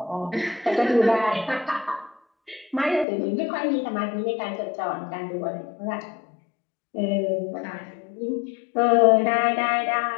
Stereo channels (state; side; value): drops out; right; at 3.1 s